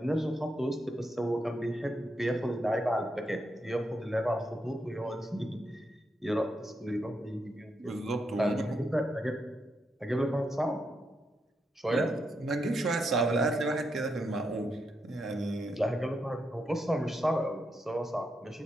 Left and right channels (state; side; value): normal; both; correlation 0.82